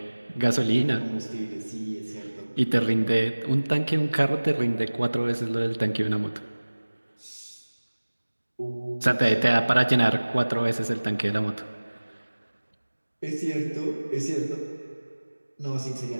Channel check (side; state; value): both; inverted; correlation -1.00